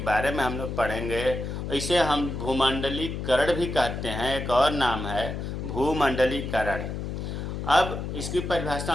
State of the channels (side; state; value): left; noise; hum, 5 dB below the sound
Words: बारे में हम लोग पढ़ेंगे। इसे हम भूमंडलीकरण भी कहते हैं, एक और नाम है भूमंडलीकरण। अब इसकी परिभाषा